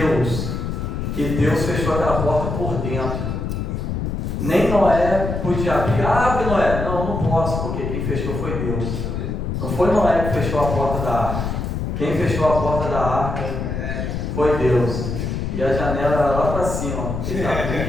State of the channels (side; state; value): left; noise; rumble, 3 dB below the sound